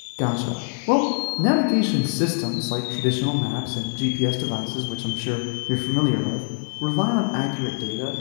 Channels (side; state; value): right; silent; digital silence